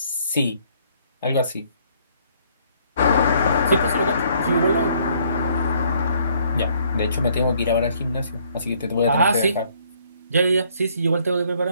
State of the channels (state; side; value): inverted; both; correlation -0.64